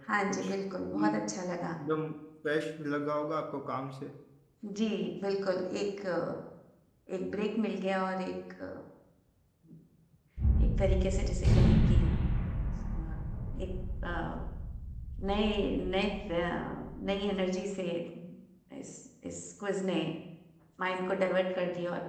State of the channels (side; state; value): both; identical; correlation 1.00